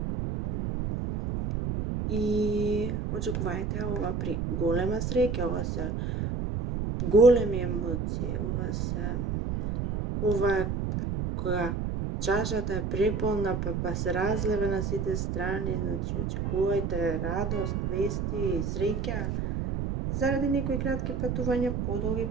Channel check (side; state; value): right; noise; rumble, 1 dB below the sound